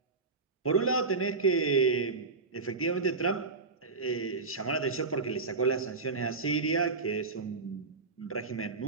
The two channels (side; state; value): left; quieter; 4.1 dB